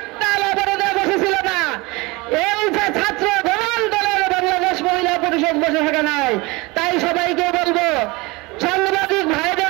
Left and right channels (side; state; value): left; quieter; 24.3 dB